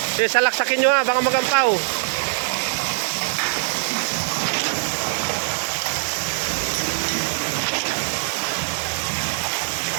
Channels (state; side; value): silent; left; digital silence